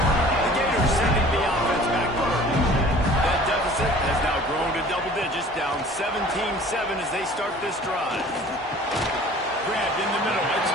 Gators sending the offense back forward. That deficit has now grown to double digits, down 17-7 as they start this drive. Grabbed in the middle, it's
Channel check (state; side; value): normal; both; correlation 0.48